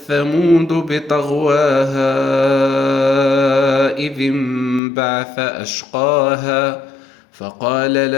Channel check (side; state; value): right; drops out; at 4.8 s